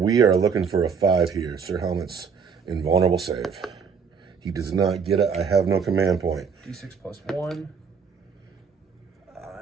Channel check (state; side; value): quieter; left; 6.1 dB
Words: are looking for a 5 here. Sir Helmet's invulnerable save. He does not get it. I have no command point. D6 plus 1.